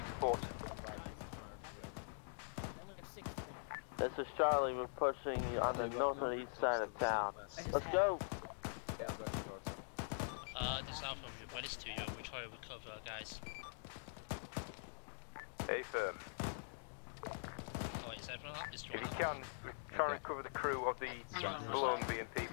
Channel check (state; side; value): silent; right; digital silence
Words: support? This is Charlie, we're pushing on the north and east side of town. Let's go! This is Alpha, we're ready to you. We try to recover, guys. Hey, firm. Oh, is everyone up? Is If Jordan you up? can, try and recover the crew of the Alone BMP.